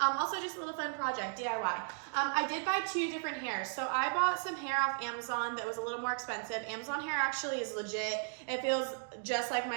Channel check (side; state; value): left; silent; 54 dB below the other